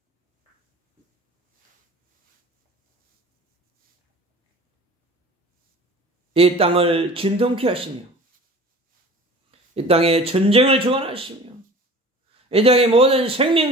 이 땅을 진동케 하시며 이 땅에 전쟁을 주관하시며 이 땅의 모든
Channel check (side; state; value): both; normal; correlation 0.42